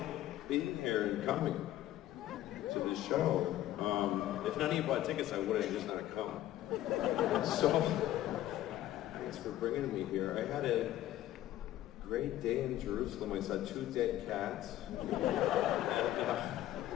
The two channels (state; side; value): quieter; right; 13.8 dB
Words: being here and coming to the show. If none of you bought tickets, I would have just not come. So, thanks for bringing me here. I had a great day in Jerusalem. I saw 2 dead cats.